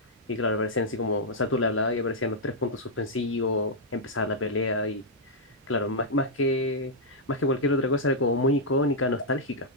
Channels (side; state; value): both; normal; correlation -0.07